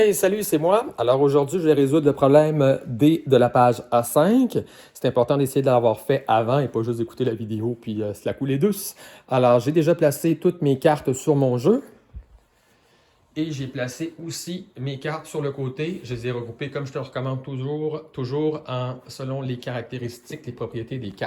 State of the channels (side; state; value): both; identical; correlation 1.00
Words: salut, c'est moi. Alors aujourd'hui, je vais résoudre le problème D de la page A5. C'est important d'essayer de l'avoir fait avant et pas juste d'écouter la vidéo puis se la couler douce. Alors, j'ai déjà placé toutes mes cartes sur mon jeu. Et j'ai placé aussi mes cartes sur le côté. Je les ai regroupées comme je te le recommande toujours selon les caractéristiques, les propriétés des